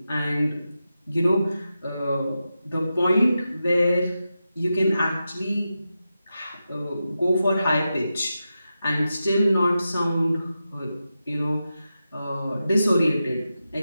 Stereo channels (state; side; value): inverted; both; correlation -0.90